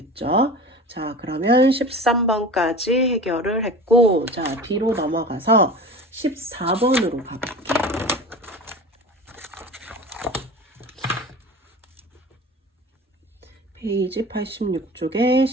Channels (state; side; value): normal; both; correlation 0.35